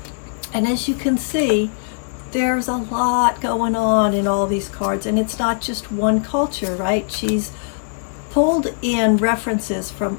And as you can see, there's a lot going on in all these cards, and it's not just one culture, right? She's pulled in references from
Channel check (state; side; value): silent; right; 65 dB below the other